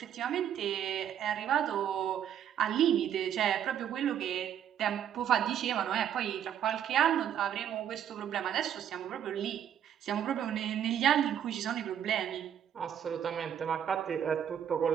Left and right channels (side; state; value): left; quieter; 9.6 dB